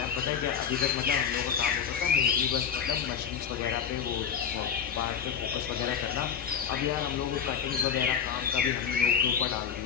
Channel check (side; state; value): right; quieter; 7.7 dB